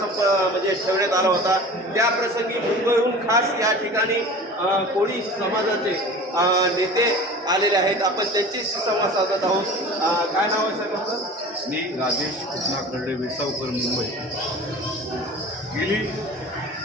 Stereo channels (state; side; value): normal; both; correlation 0.39